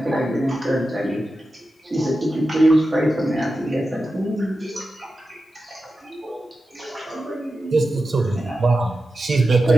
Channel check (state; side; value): normal; both; correlation 0.92